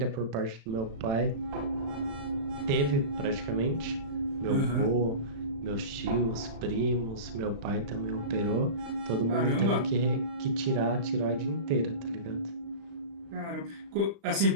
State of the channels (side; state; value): left; late; 36 ms